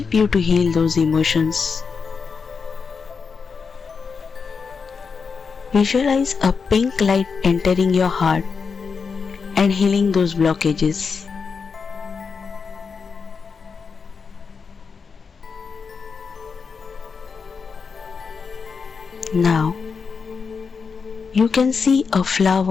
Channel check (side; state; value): right; quieter; 5.4 dB